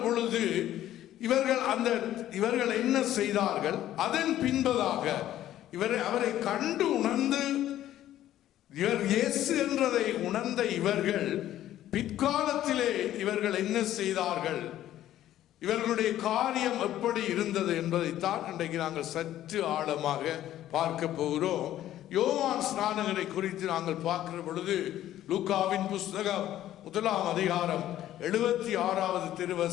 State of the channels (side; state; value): right; quieter; 12.8 dB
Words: பொழுது இவர்கள் என்ன செய்தார்கள்? அதன் பின்பதாக அவரை கண்டு உணர்ந்து இவர் இயேசு என்றதை உணர்ந்த இவர்கள் பிற்காலத்திலே இவர்கள் என்ன செய்தார்கள், இவர்களுடைய காரியம் எப்படி இருந்தது என்பதைத்தான் இன்றைக்கு நாங்கள் சற்று ஆழமாக பார்க்க போகிறோம். யோவான் ஸ்நானகரை குறித்து நாங்கள் பார்க்கிற பொழுது லூக்காவின் புஸ்தகம் 1ஆம் அதிகாரம் 76வது